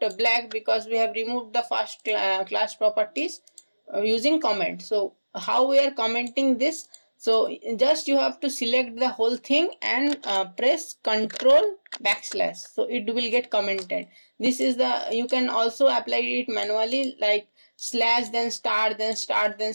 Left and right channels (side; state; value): both; inverted; correlation -1.00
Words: black because we have removed the first class properties using comment. So how we are commenting this? So just you have to select the whole thing and press control backslash, so it will get commented. This is the, you can also apply it manually, like slash then star then star then